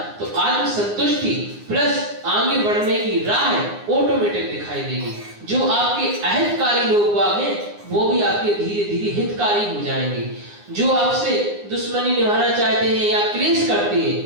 तो आत्म संतुष्टि प्लस आगे बढ़ने की राह ऑटोमेटिक दिखाई देगी। जो आपके अहितकारी लोग हैं वो भी आपके धीरे धीरे हितकारी हो जाएंगे। जो आपसे दुश्मनी निभाना चाहते हैं या क्लेश करते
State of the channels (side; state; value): left; late; 9.8 ms